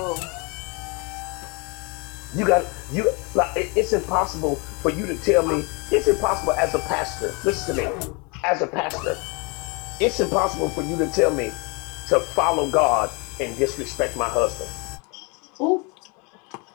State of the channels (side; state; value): right; quieter; 30.5 dB